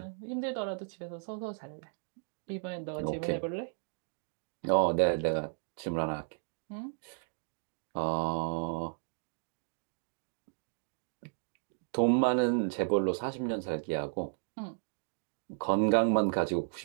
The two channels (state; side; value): silent; left; 55 dB below the other